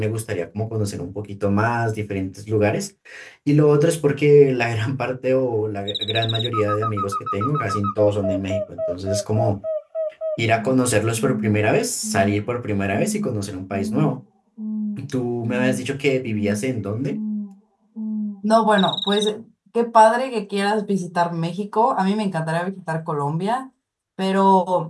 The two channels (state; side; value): identical; both; correlation 1.00